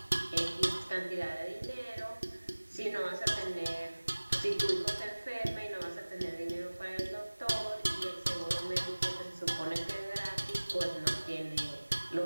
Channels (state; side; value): inverted; both; correlation -1.00